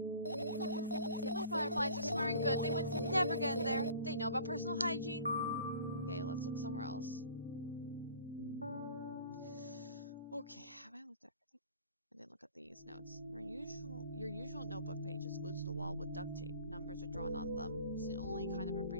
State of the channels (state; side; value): inverted; both; correlation -0.47